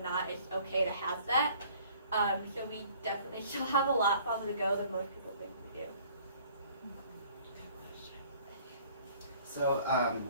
not it's okay to have that. So we definitely still have a lot farther to go than most people think we do. So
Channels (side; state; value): both; inverted; correlation -0.55